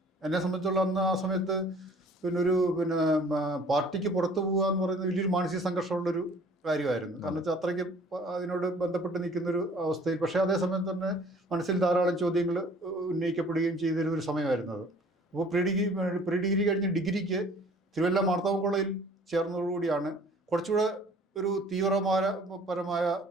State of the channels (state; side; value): normal; both; correlation 0.53